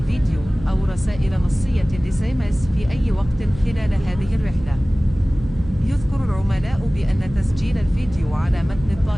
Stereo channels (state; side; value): noise; right; hum, 14 dB below the sound